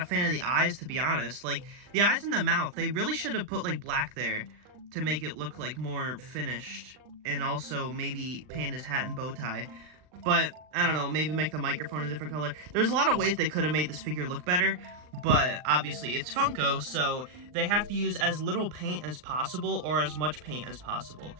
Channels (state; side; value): late; left; 39 ms